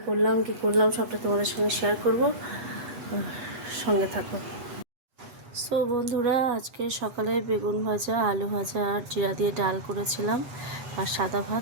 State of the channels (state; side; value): late; left; 8.2 ms